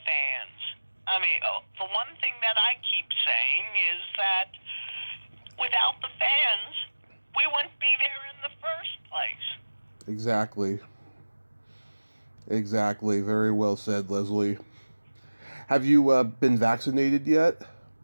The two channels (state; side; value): inverted; both; correlation -1.00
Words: fans. I mean, the one thing that I keep saying is that without the fans, we wouldn't be there in the first place. Exactly. Exactly. Very well said, Leslie. Have you been vaccinated yet?